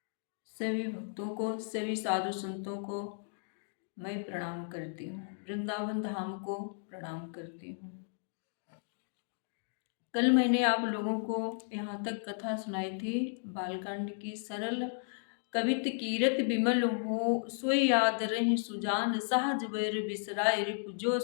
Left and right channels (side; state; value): right; silent; digital silence